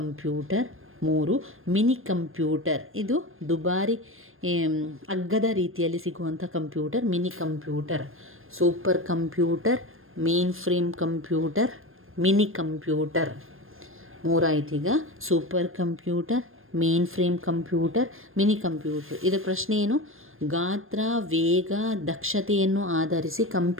3 mini computer. ಇದು ದುಬಾರಿ ಅಗ್ಗದ ರೀತಿಯಲ್ಲಿ ಸಿಗುವಂಥ computer, mini computer. Super computer, mainframe computer, mini computer. 3 ಆಯ್ತೀಗ: super computer, mainframe computer, mini computer. ಇದರ ಪ್ರಶ್ನೆ ಏನು? ಗಾತ್ರ, ವೇಗ, ದಕ್ಷತೆಯನ್ನು ಆಧರಿಸಿ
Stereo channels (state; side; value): late; left; 0.60 ms